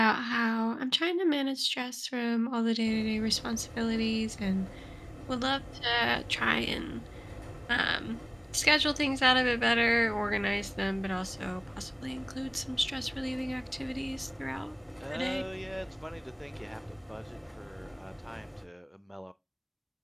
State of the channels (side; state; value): both; identical; correlation 1.00